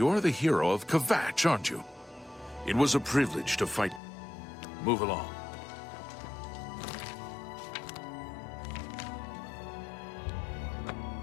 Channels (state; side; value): drops out; right; at 4.0 s